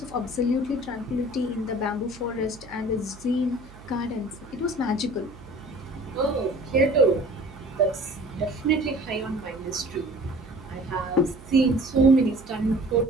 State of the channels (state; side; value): noise; right; hum, 20 dB below the sound